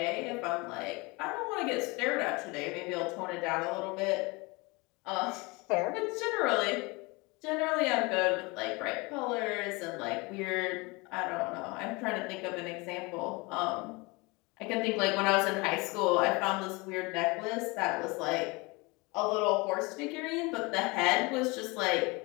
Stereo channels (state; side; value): quieter; right; 26.0 dB